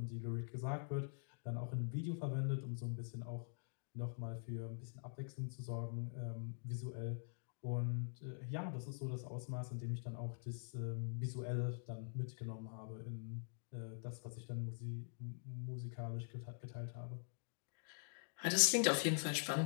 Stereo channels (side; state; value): right; silent; digital silence